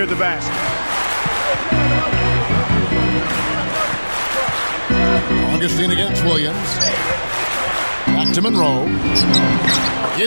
the basket. Augustine against Williams. Back to Monroe.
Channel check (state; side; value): inverted; both; correlation -1.00